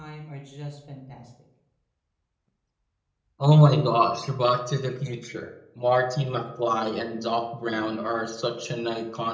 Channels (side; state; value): both; identical; correlation 1.00